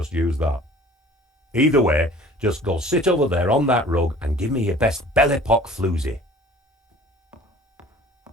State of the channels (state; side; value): normal; both; correlation 0.48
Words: use that. Either way, just go sit over there on that rug and give me your best Belle Epoque floozy.